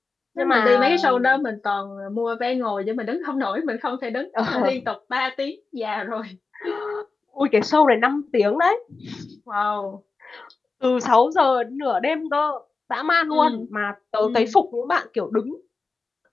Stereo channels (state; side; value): quieter; right; 4.1 dB